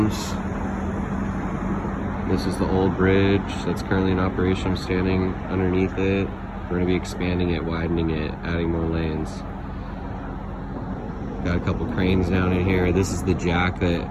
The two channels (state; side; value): identical; both; correlation 1.00